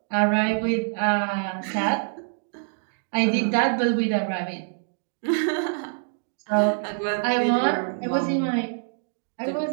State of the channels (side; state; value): left; silent; digital silence